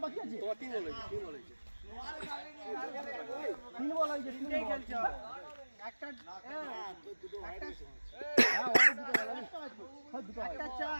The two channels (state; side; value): inverted; both; correlation -1.00